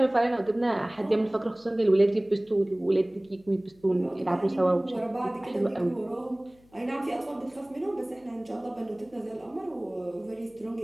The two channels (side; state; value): left; noise; hum, 29 dB below the sound